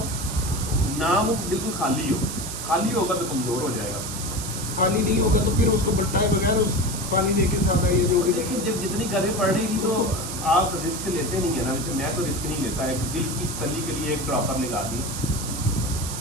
ना, वो बिल्कुल खाली होगा तो कमजोर हो जाएगा। खाली नहीं होगा तो फिर उसको बट्टाए बगैर उस पानी देके सादा ये जो भी लेकिन जब जितनी गर्मी पड़ रही थी तो आप रिस्क लेते नहीं है ना, मैं तो रिस्क नहीं लेता, एक दिल की तसल्ली के लिए एक ड्रॉपर लगा दी,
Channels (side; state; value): right; noise; hiss, 7 dB below the sound